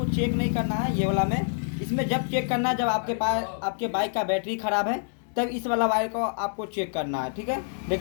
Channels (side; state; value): right; silent; digital silence